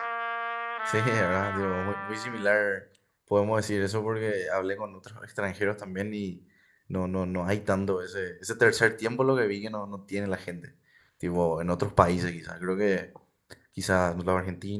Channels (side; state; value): both; identical; correlation 1.00